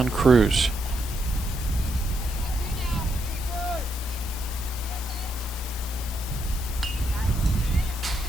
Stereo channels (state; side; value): normal; both; correlation 0.79